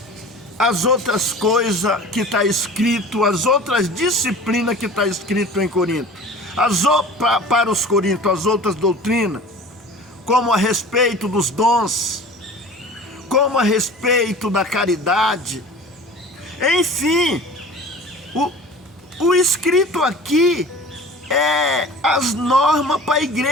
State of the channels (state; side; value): normal; both; correlation 0.41